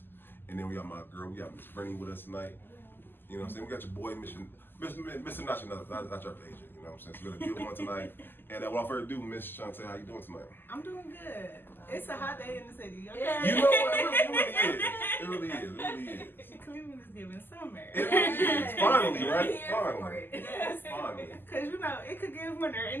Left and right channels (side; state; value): right; late; 0.096 ms